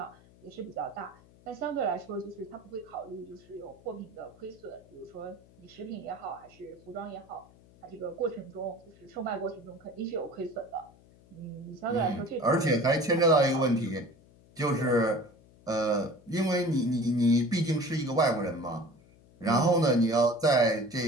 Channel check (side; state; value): left; noise; hum, 26 dB below the sound